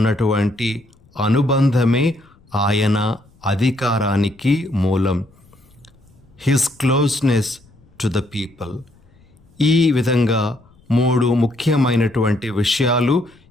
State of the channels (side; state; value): left; noise; rumble, 30 dB below the sound